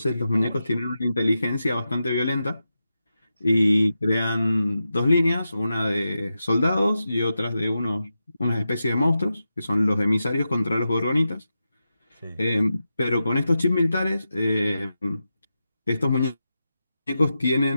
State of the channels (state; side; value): inverted; both; correlation -0.90